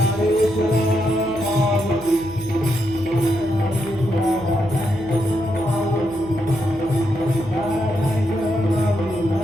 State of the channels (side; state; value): left; noise; hum, 18 dB below the sound